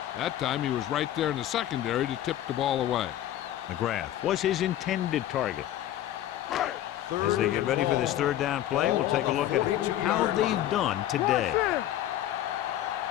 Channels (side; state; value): right; quieter; 12.7 dB